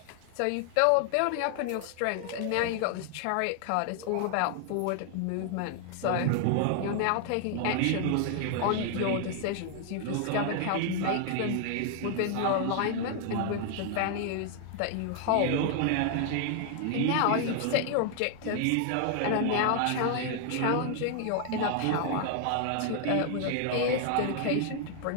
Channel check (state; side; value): different; both; correlation 0.00